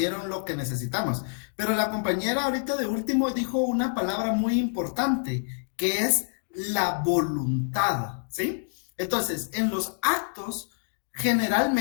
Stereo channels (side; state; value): right; silent; digital silence